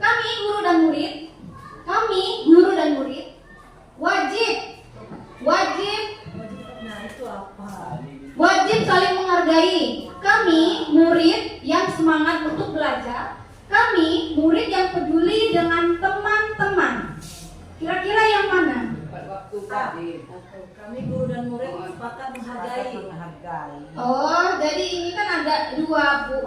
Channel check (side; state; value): both; identical; correlation 1.00